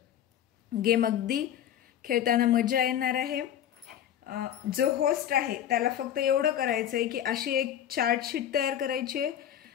गेम। अगदी खेळताना मजा येणार आहे। जो होस्ट आहे त्याला फक्त एवढं करायचं आहे की अशी एक चार्ट शीट तयार करायची आहे,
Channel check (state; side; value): quieter; right; 10.5 dB